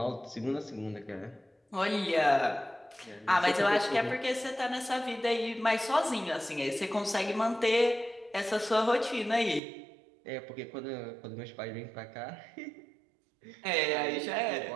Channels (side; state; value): left; drops out; at 9.6 s